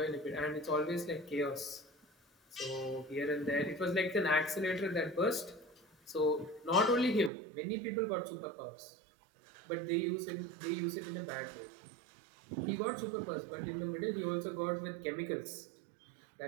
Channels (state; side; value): drops out; left; at 7.3 s